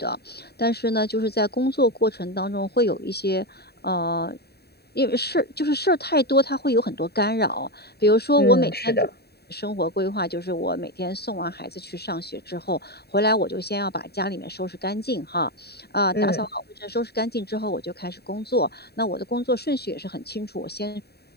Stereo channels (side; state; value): right; late; 0.47 ms